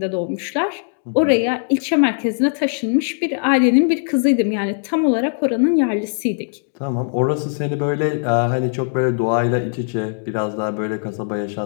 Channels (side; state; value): right; silent; digital silence